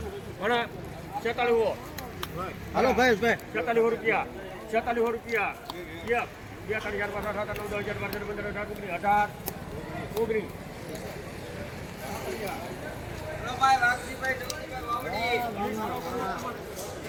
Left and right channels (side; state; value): both; identical; correlation 1.00